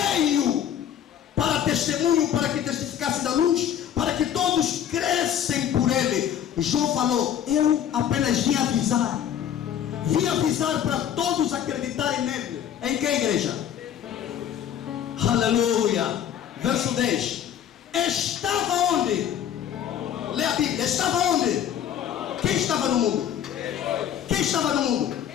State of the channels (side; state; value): right; quieter; 9.8 dB